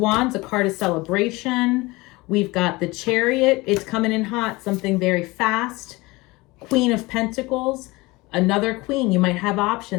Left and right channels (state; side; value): quieter; right; 22.4 dB